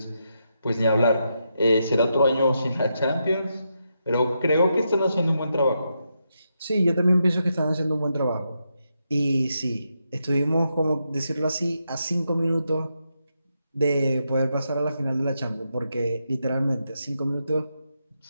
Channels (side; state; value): both; inverted; correlation -0.83